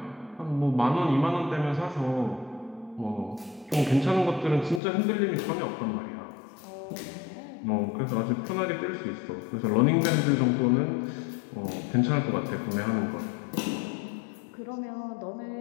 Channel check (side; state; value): right; drops out; at 4.8 s